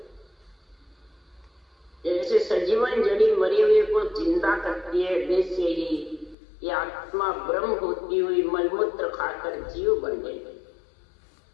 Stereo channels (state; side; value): drops out; right; at 6.4 s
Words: जैसे सजीवन जड़ी मरी हुई को जिंदा करती है वैसे ही ये आत्मा ब्रह्म होती हुई मलमूत्र खाकर जीव बन गई।